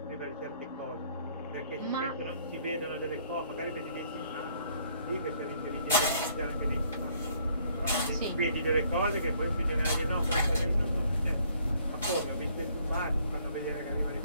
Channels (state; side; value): inverted; both; correlation -0.63